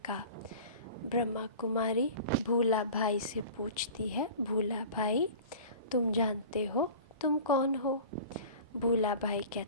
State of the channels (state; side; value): inverted; both; correlation -0.39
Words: का। ब्रह्मा कुमारी भूला भाई से पूछती है, भूला भाई तुम जानते हो तुम कौन हो? भूला भाई